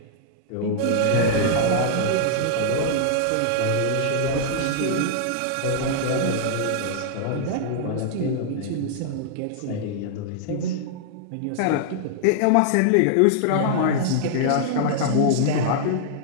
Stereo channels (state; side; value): different; both; correlation -0.01